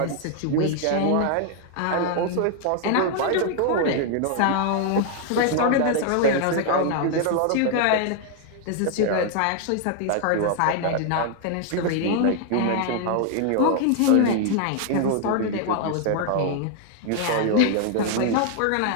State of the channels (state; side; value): different; both; correlation 0.00